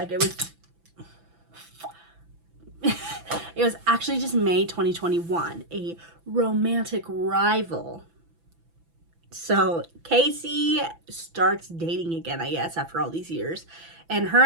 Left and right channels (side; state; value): left; late; 6.0 ms